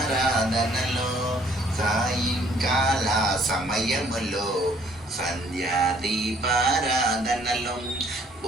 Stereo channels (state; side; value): normal; both; correlation 0.61